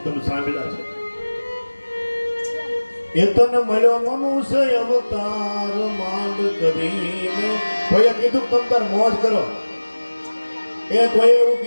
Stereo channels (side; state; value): both; inverted; correlation -1.00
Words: તમે સાંભળ્યા છે. એ તને મળ્યો મનુષ્ય અવતાર માંડ કરીને. કોઈએ કીધું તમ તાર મોજ કરો, એ કોઈએ એવું